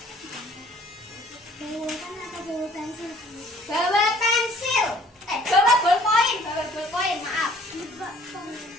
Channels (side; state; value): both; normal; correlation 0.56